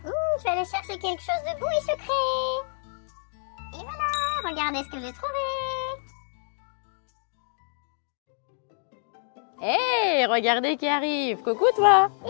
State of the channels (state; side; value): silent; right; digital silence